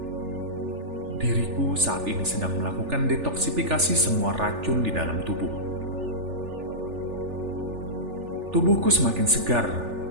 Diriku saat ini sedang melakukan detoksifikasi semua racun di dalam tubuh. Tubuhku semakin segar,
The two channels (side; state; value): left; late; 3.4 ms